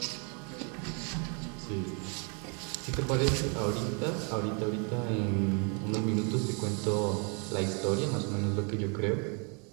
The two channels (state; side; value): quieter; left; 36.7 dB